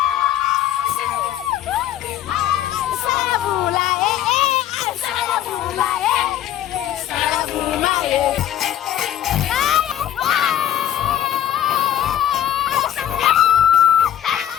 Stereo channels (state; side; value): quieter; right; 11.4 dB